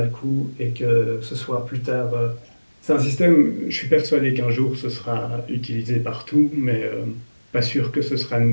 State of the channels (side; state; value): both; inverted; correlation -1.00